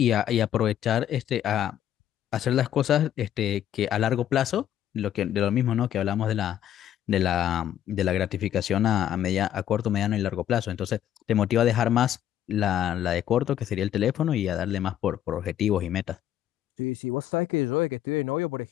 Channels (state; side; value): quieter; right; 11.1 dB